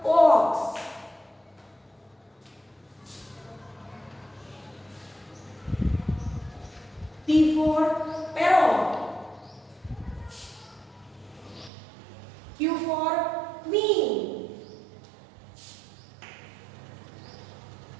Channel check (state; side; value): drops out; left; at 11.7 s